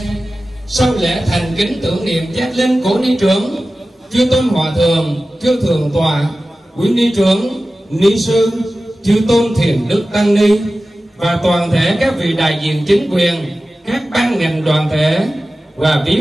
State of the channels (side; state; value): both; normal; correlation 0.95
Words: sau lễ thành kính tưởng niệm giác linh cố ni trưởng, chư tôn hòa thượng, chư thượng tọa, quý ni trưởng, ni sư, chư tôn thiền đức tăng ni và toàn thể các vị đại diện chính quyền, các ban ngành đoàn thể và